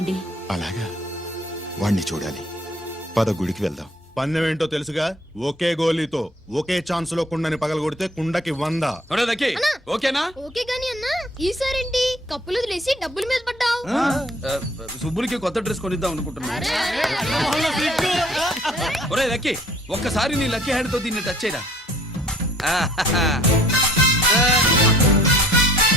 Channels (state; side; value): normal; both; correlation 0.56